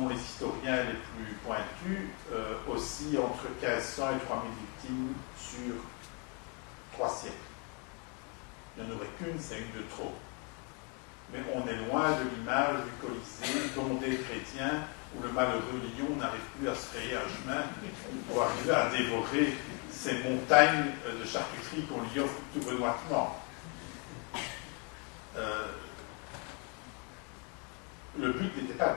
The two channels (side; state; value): right; quieter; 35.2 dB